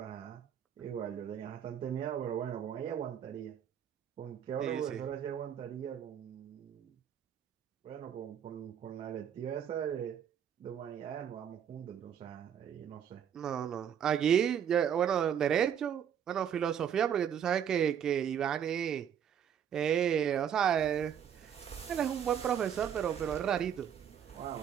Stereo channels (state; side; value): quieter; left; 8.8 dB